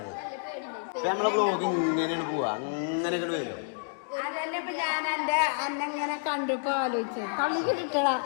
ഇപ്പൊ നമ്മളെ ബ്ലോഗ് ഇങ്ങനെയാണ് പോവാ, അങ്ങനെ ഇങ്ങോട്ട് വരും. അതന്നെ ഇപ്പൊ ഞാൻ എന്റെ അന്നെങ്ങനെ കണ്ടിപ്പോ ആലോചിച്ചു കളി കിട്ടടാ.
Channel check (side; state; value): right; silent; digital silence